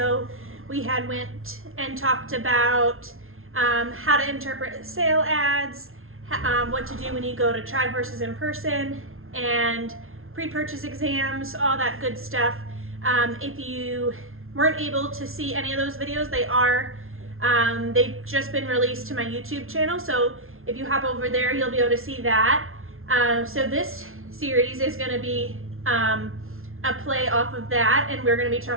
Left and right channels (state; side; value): late; left; 0.61 ms